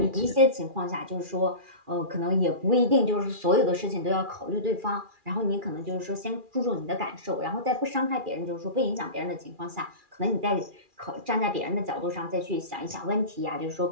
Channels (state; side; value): late; left; 2.4 ms